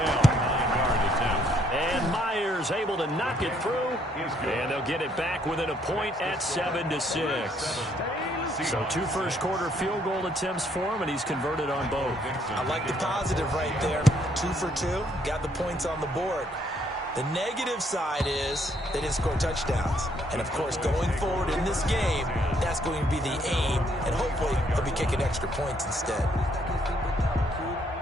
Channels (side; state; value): both; normal; correlation 0.69